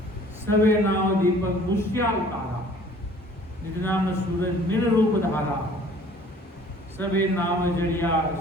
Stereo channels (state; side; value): normal; both; correlation 0.52